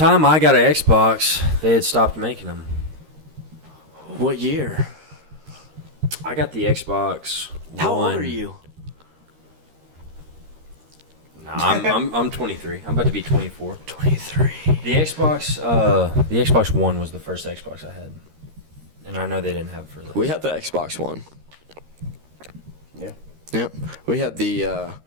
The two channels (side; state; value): left; late; 13 ms